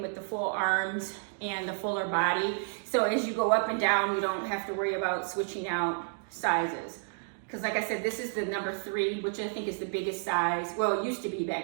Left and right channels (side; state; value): left; silent; digital silence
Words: with the full arms and the fuller body. So as you go up and down, you don't have to worry about switching out sizes. Because like I said, this is the number 3, which I think is the biggest size. Well, it used to be